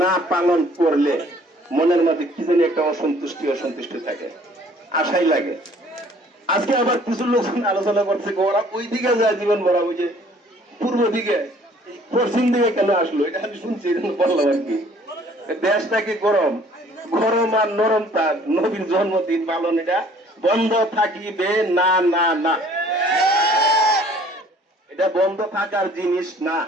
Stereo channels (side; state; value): both; normal; correlation 0.56